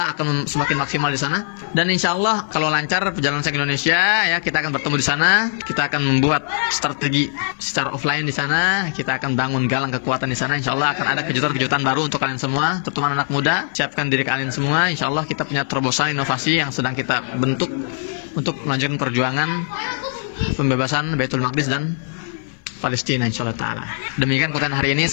akan semakin maksimal di sana. Dan Insya Allah kalau lancar perjalanan saya ke Indonesia ya, kita akan bertemu di sana, kita akan membuat strategi secara offline di sana, kita akan bangun galang kekuatan di sana. Insya Allah akan ada kejutan-kejutan baru untuk kalian semua, terutama anak muda. Siapkan diri kalian semua. Insya Allah kita punya terobosan inovasi yang sedang kita bentuk untuk melanjutkan perjuangan pembebasan Baitul Maqdis dan Palestina Insya Allah Ta'ala. Demikian konten hari ini,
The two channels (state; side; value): silent; right; 56 dB below the other